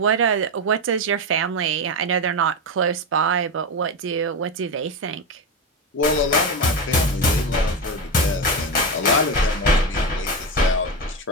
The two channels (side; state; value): both; normal; correlation 0.15